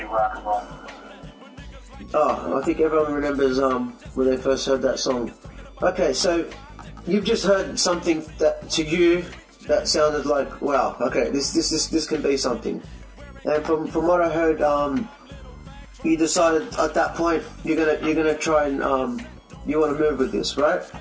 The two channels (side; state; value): both; identical; correlation 1.00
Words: of rock and roll. Oh, I think everyone remembers when they first heard that song. Okay, so you've just heard something that to you that sounded like, wow, okay, this can be something. And from what I heard, you decided at that point you're gonna try and you want to move with this, right?